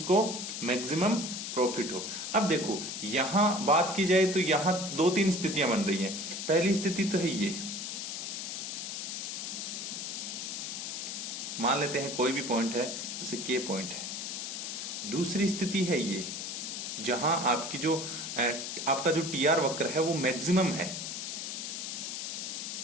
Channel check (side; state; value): left; noise; hiss, 5 dB below the sound